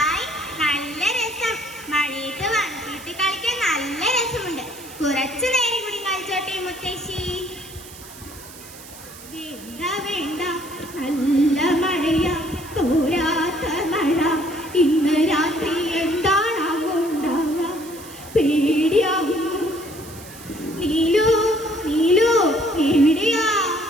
നല്ല രസം. മഴയത്ത് വന്നിട്ട് കളിക്കാൻ നല്ല രസമുണ്ട്. കുറച്ചു നേരം കൂടി കളിച്ചോട്ടെ മുത്തശ്ശി? വേണ്ട വേണ്ട, നല്ല മഴയാ, തോരാത്ത മഴ. ഇന്ന് രാത്രി എന്താണാവോ ഉണ്ടാവുക? പേടിയാവുന്നു. നീലു നീലു എവിടെയാ?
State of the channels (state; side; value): noise; right; hiss, 17 dB below the sound